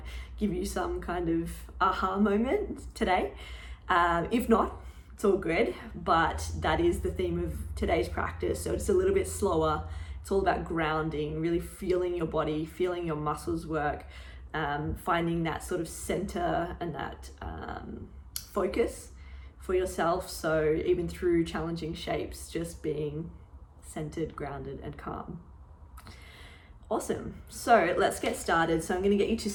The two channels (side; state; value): both; identical; correlation 1.00